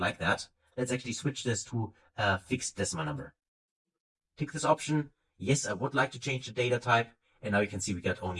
like that. Let's actually switch this to a fixed decimal number. Tick this option. Yes, I would like to change the data type. And now you can see we got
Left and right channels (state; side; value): identical; both; correlation 1.00